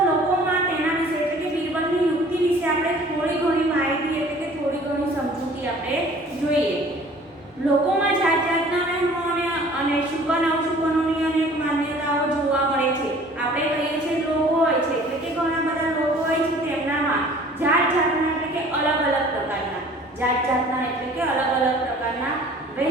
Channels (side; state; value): both; normal; correlation 0.50